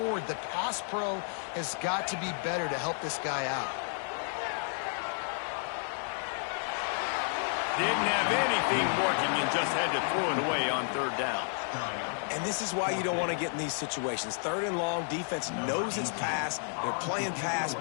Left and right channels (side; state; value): right; silent; 57 dB below the other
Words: the pass pro has got to be better to help this guy out. Didn't have anything working and just had to throw it away on 3rd down. And this is why you don't want to get in these situations. 3rd and long, defense knows it's pass. They're playing pass,